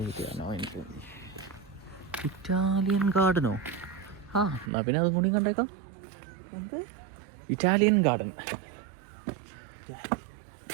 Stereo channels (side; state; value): left; drops out; at 4.7 s